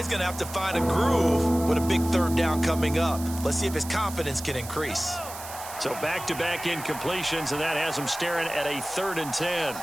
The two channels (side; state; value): right; noise; hiss, 12 dB below the sound